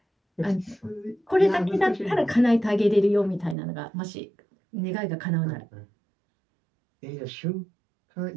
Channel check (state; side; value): drops out; left; at 3.6 s